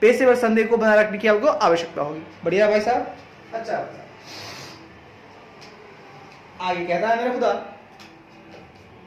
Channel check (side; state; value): both; identical; correlation 1.00